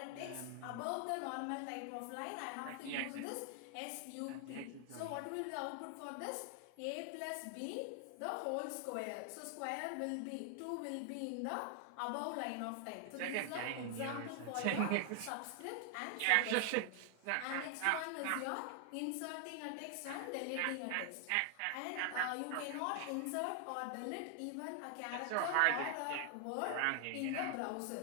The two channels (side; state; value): both; different; correlation 0.00